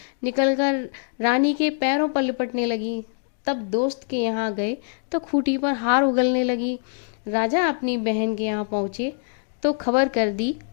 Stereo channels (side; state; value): right; silent; digital silence